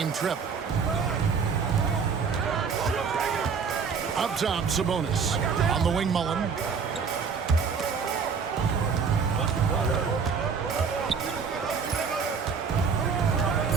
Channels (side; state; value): left; quieter; 5.9 dB